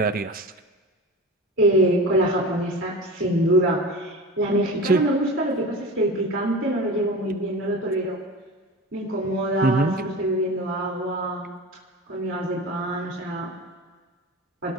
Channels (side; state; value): both; normal; correlation 0.31